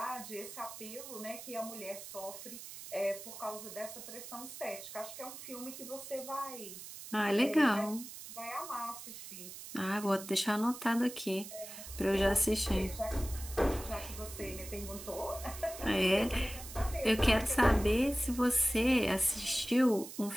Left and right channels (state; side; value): noise; right; hiss, 12 dB below the sound